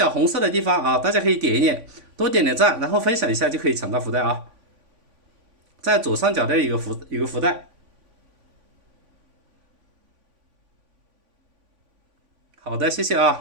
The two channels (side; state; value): left; late; 3.5 ms